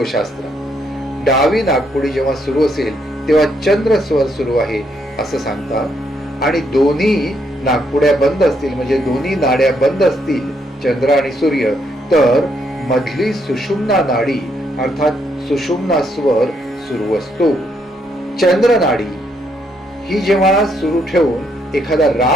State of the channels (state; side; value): normal; both; correlation 0.74